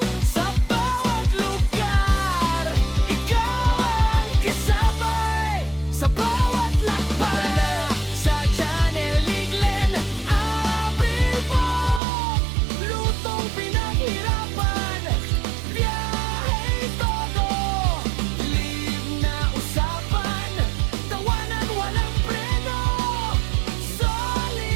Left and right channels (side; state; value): left; drops out; at 12.0 s